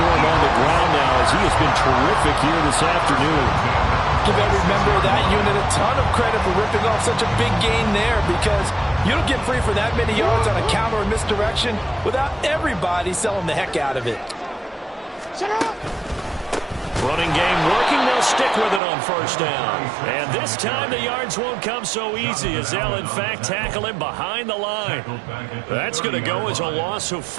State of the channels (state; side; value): drops out; left; at 18.8 s